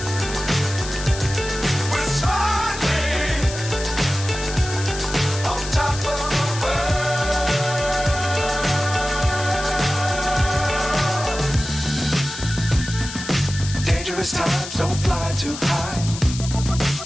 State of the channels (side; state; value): left; noise; hiss, 10 dB below the sound